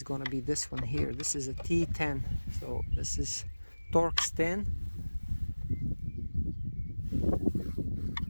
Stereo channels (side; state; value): both; inverted; correlation -1.00